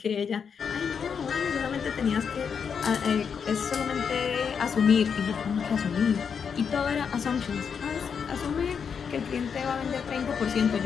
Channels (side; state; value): right; quieter; 6.6 dB